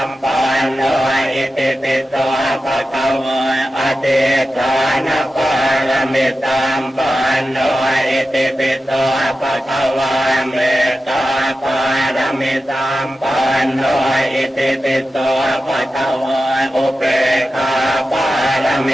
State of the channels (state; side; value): normal; both; correlation 0.93